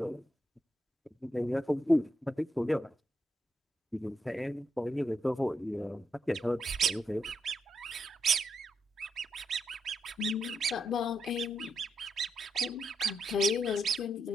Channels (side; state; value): both; normal; correlation 0.81